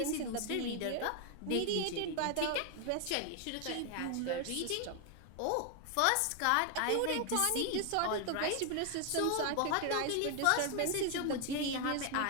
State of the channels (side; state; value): both; different; correlation 0.01